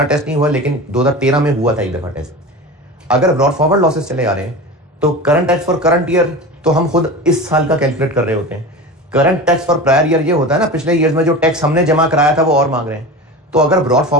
टेस्ट नहीं हुआ, लेकिन 2013 में हुआ था एक दफा टेस्ट। अगर ब्रॉड फॉरवर्ड लॉसेस चले आ रहे हैं तो current tax for current year तो हम खुद इस साल का कैलकुलेट कर रहे होते हैं। Current tax for prior year ये होता है ना, पिछले ईयर्स में जो टैक्स हमने जमा कराया था वो और मांग रहे हैं। तो अगर ब्रॉड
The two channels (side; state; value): both; normal; correlation 0.30